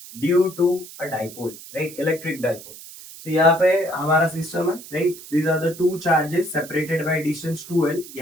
due to a dipole, right? Electric dipole. So यहाँ पे हमारा सिस्टम है, right? These are the two charges separated by distance 2L.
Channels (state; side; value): noise; right; hiss, 16 dB below the sound